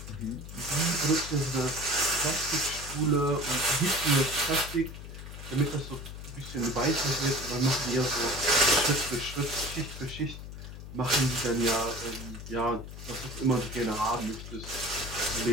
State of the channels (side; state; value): left; noise; hum, 11 dB below the sound